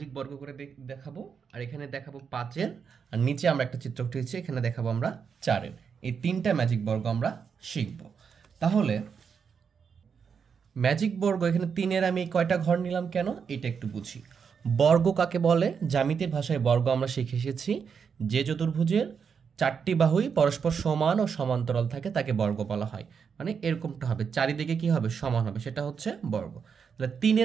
বর্গ করে দেখাবো, আর এখানে দেখাবো 5-এর, আর নিচে আমরা একটা চিত্র উঠিয়েছি, এখানে দেখাবো আমরা 4-এর। এই 3টা ম্যাজিক বর্গ আমরা শিখব। তাহলে ম্যাজিক বর্গ এখানে 3-এর আমি কয়টা ঘর নিলাম কেন, এটা একটু বুঝি। বর্গ কাকে বলে? জ্যামিতির ভাষায় বর্গ আমরা শিখে এসেছি যে চতুর্ভুজের 4টি বাহুই পরস্পর সমান ও সমান্তরাল থাকে তাকে বর্গ বলা হয়। মানে এরকমটা হবে, চারিদিকে কি হবে? সমান হবে, সেটা হচ্ছে বর্গ। তাহলে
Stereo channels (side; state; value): left; quieter; 6.4 dB